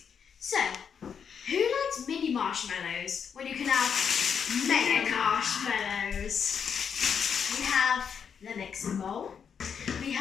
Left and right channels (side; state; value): right; quieter; 7.1 dB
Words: So, who likes mini marshmallows when you can have mega marshmallows? We have the mixing bowl. We